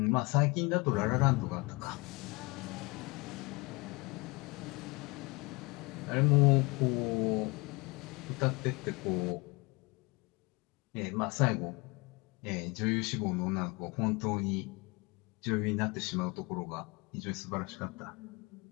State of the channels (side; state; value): right; quieter; 26.4 dB